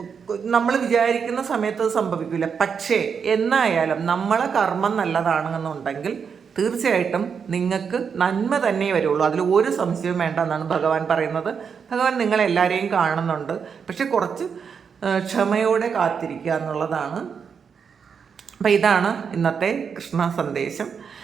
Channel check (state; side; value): quieter; left; 6.5 dB